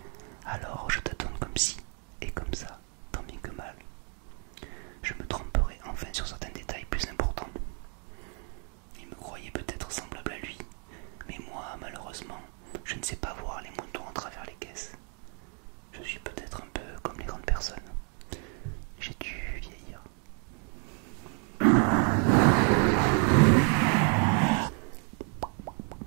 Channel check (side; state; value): left; quieter; 39.9 dB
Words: Alors, je tâtonne comme ci et comme ça, tant bien que mal. Je me tromperai enfin sur certains détails plus importants. Il me croyait peut-être semblable à lui, mais moi, malheureusement, je ne sais pas voir les moutons à travers les caisses. Je suis peut-être un peu comme les grandes personnes. J'ai dû vieillir.